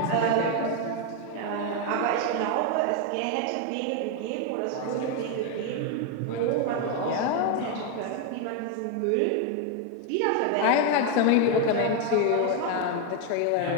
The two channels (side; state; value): both; different; correlation 0.01